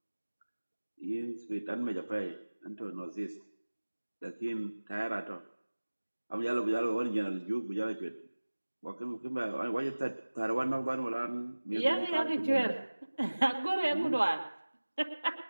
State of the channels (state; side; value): inverted; both; correlation -1.00